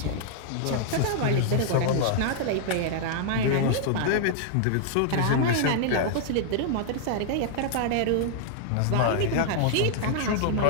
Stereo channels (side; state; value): both; different; correlation -0.01